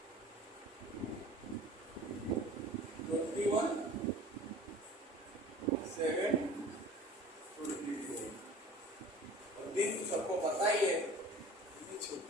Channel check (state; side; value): normal; both; correlation 0.43